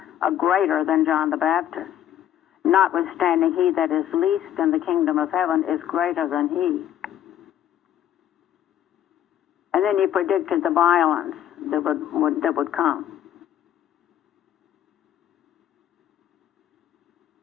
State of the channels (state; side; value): quieter; right; 11.1 dB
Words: a greater than John the Baptist. Notwithstanding, he that is least in the kingdom of heaven is greater than he. And then he predicted the violence that would come.